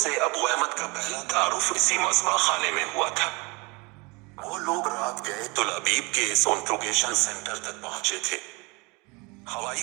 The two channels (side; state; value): left; quieter; 27.5 dB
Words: ابو احمد کا پہلا تعارف اسی مذبح خانے میں ہوا تھا۔ وہ لوگ رات گئے تل ابیب کے اس انٹروگیشن سینٹر تک پہنچے تھے۔ ہوائی